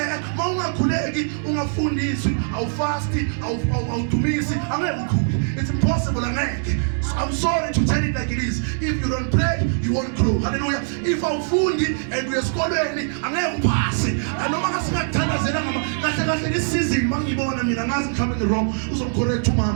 Mawungakhuleki ungafundiswi, awufasti, awudumisi, angeke ukhule. It's impossible angeke. I'm sorry to tell it like it is. If you don't pray, you won't grow. Hallelujah. If awufundi and uyesikolweni angeke uphase. Noma ngasingakuthandazela ngama kahle this season mangibona mina ngazi mhlawumbe wrong uzomcorrect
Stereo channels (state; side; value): silent; left; 63 dB below the other